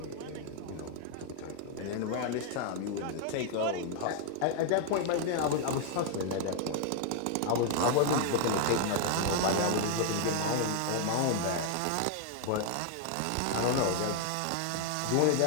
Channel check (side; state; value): both; different; correlation 0.00